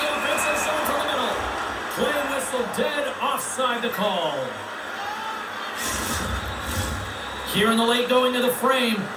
offensive zone from the middle. Play whistle dead, offside the call. Here in the late going of the frame,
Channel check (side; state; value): both; identical; correlation 1.00